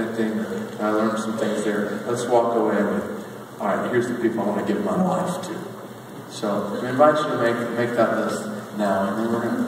I learned some things there. Let's walk away with, all right, here's the people I want to give my life to. So we invite you to make that list now, and then we're going to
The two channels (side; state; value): both; identical; correlation 1.00